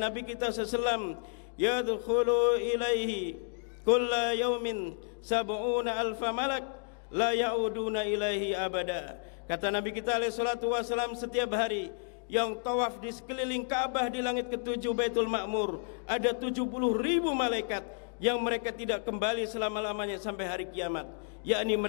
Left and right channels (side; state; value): right; silent; digital silence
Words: kita SAW, yadkhulu ilaihi kulla yaumin sab'una alfa malak la ya'uduna ilaihi abada. Kata Nabi kita SAW, setiap hari yang tawaf di sekeliling Ka'bah di langit ketujuh Baitul Ma'mur, ada 70.000 malaikat yang mereka tidak kembali selama-lamanya sampai hari kiamat, yakni